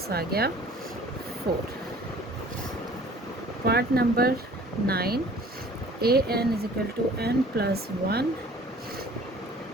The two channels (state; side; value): normal; both; correlation 0.50